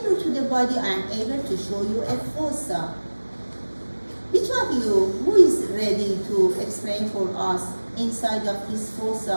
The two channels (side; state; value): both; inverted; correlation -1.00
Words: to the body, I am able to show you a fossa. Which of you, who is ready to explain for us inside of this